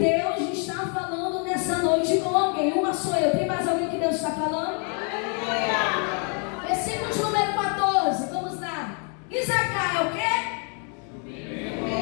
está falando nessa noite com alguém. Uma sou eu, tem mais alguém que Deus está falando? Aleluia. Versículo de número 14, vamos lá. Isacar é o quê?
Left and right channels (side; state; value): right; quieter; 39.6 dB